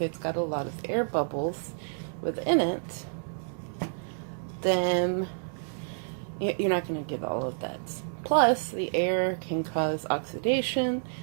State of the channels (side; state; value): left; silent; digital silence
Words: got a lot of air bubbles within it, then you're not going to get all of that. Plus, the air can cause oxidation